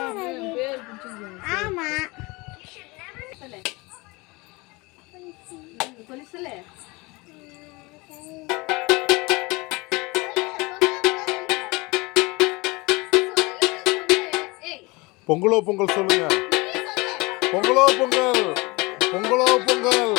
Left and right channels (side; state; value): right; quieter; 24.7 dB